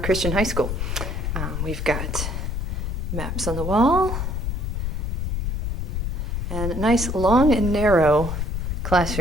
High School. We've got maps on the wall and a nice long and narrow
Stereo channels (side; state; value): left; noise; rumble, 1 dB below the sound